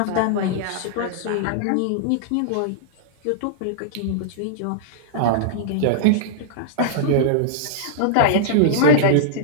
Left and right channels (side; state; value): both; different; correlation -0.02